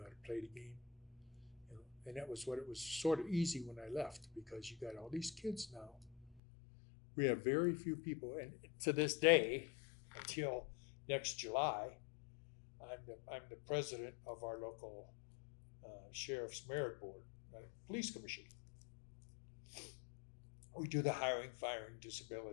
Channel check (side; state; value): right; drops out; at 6.4 s